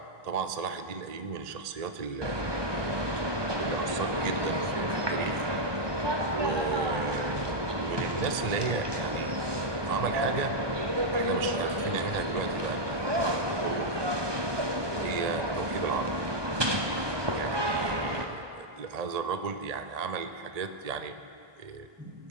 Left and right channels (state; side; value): late; left; 1.2 ms